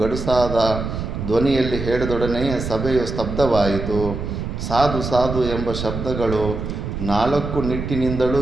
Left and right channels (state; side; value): noise; right; rumble, 5 dB below the sound